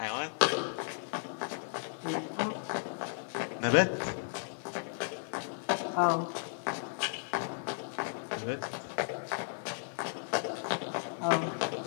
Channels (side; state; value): right; silent; 55 dB below the other